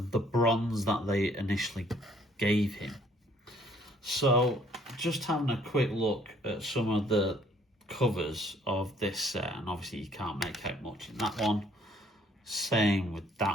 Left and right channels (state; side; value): normal; both; correlation 0.62